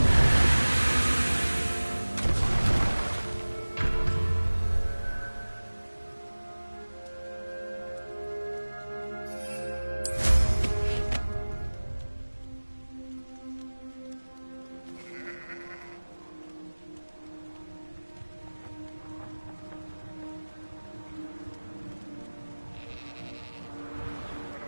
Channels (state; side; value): inverted; both; correlation -1.00